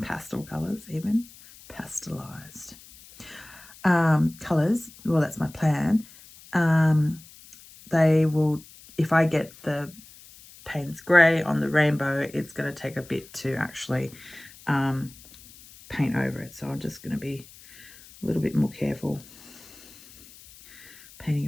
pastel colors, even pastelized colors. Well, that's my plan. They will, if I get the Payne's grey on the rainbow, it's going to take a bit to actually paint over it. So I'm just going to be a little bit more careful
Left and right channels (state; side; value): noise; left; hiss, 21 dB below the sound